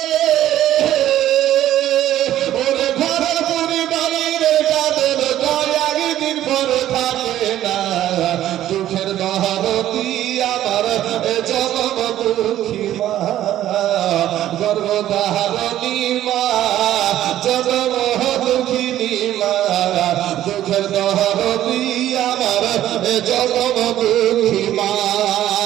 দুঃখের দহারতি আমার জনম দুঃখী মা গর্ভধারণী মা জনম দুঃখিনী মা দুঃখের দহারতি আমার জনম দুঃখী মা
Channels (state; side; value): quieter; left; 12.7 dB